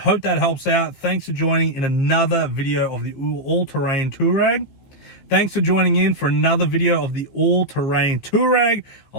that helps out. Thanks for joining in another video of the all-terrain Touareg. Thanks for joining in for another video of the all-terrain Touareg.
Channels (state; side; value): late; right; 15 ms